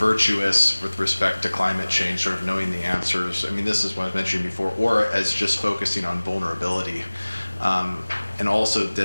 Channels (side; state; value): both; inverted; correlation -1.00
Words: with respect to climate change, sort of knowing the answers. I mean, this is what I was mentioning before, or as just focusing on vulnerability. And also